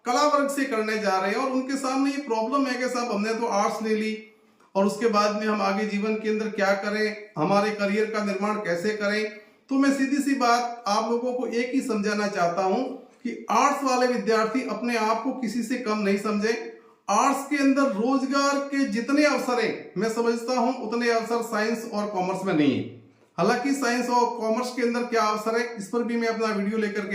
कला वर्ग से करने जा रहे हैं और उनके सामने ये प्रॉब्लम है कि साहब हमने तो आर्ट्स ले ली और उसके बाद में हम आगे जीवन के अंदर क्या करें, हमारे करियर का निर्माण कैसे करें। तो मैं सीधी सी बात आप लोगों को एक ही समझाना चाहता हूं कि आर्ट्स वाले विद्यार्थी अपने आप को किसी से कम नहीं समझे। आर्ट्स के अंदर रोजगार के जितने अवसर हैं मैं समझता हूं उतने अवसर साइंस और कॉमर्स में नहीं है। हालांकि साइंस और कॉमर्स के अंदर क्या अवसर है इस पर भी मैं अपना वीडियो लेकर के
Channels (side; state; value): both; identical; correlation 1.00